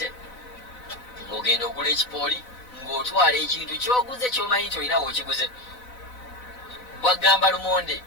ng'ogenda ogula ekipooli ng'otwala ekintu ky'oguze ky'omanyi nti olina w'okiguze. Bw'agamba lumonde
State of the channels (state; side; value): late; right; 4.0 ms